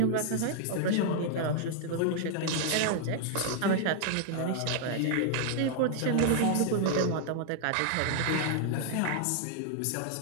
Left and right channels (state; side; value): different; both; correlation 0.00